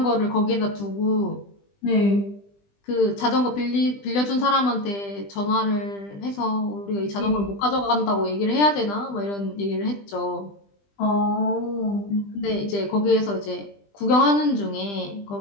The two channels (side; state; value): right; late; 20 ms